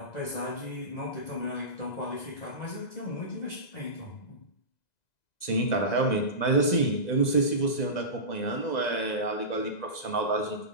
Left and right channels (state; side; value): late; right; 2.0 ms